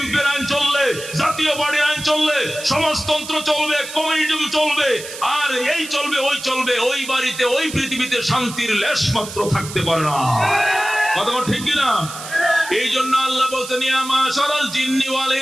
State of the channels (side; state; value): right; noise; hiss, 11 dB below the sound